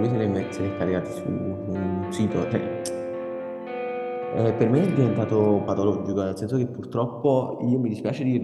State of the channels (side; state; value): both; identical; correlation 1.00